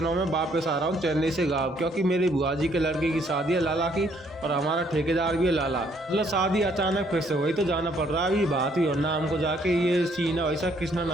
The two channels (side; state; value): both; normal; correlation 0.67